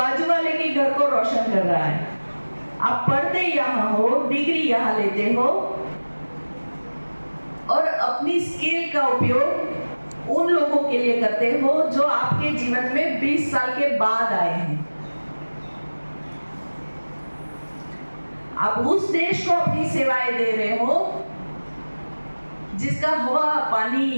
वाले के घर को रोशन कर रहा है। आप पढ़ते यहाँ हो, डिग्री यहाँ लेते हो और अपनी स्किल का उपयोग उन लोगों के लिए करते हो जो आपके जीवन में 20 साल के बाद आए हैं। आप उस देश को अपनी सेवाएं दे रहे हो जिसका हवा,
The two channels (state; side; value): inverted; both; correlation -1.00